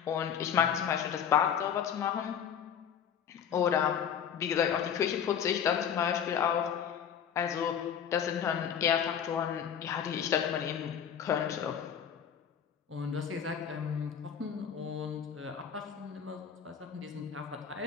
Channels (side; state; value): right; quieter; 8.3 dB